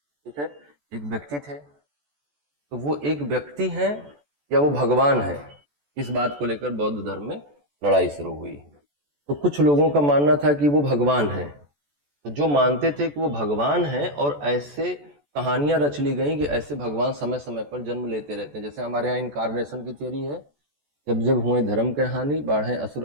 है, एक व्यक्ति थे। तो वो एक व्यक्ति है या वो भगवान है, इस बात को लेकर बौद्ध धर्म में लड़ाई शुरू हुई। तो कुछ लोगों का मानना था कि वो भगवान है। तो जो मानते थे कि वो भगवान है, और ऐसे कहानियां रच ली गई कि ऐसे भगवान समय समय पर जन्म लेते रहते हैं। जैसे हमारे यहाँ इनकारनेशन की थियरी है, जब जब हुए धर्म के हानि, बाढ़े असुर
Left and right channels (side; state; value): left; late; 14 ms